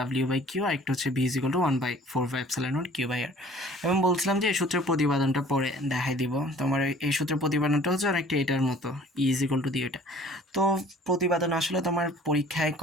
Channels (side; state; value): both; normal; correlation 0.51